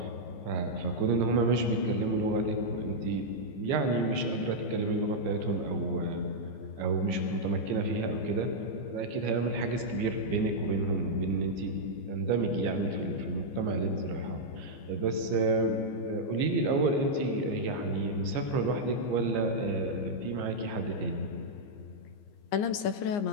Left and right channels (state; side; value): late; right; 15 ms